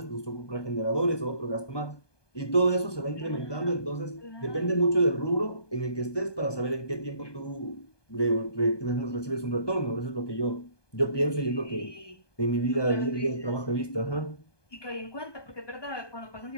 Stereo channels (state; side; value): late; right; 1.2 ms